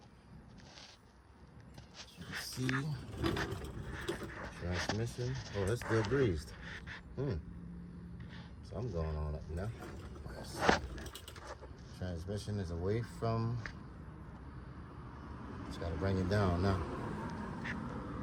As you can see, transmission. Oh, that's still greased. Something going on up now. Transmission is away from. Just gotta bring it down now.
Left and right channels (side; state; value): both; identical; correlation 1.00